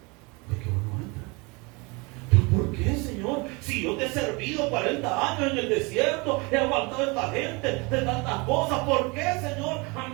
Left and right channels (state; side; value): quieter; left; 27.9 dB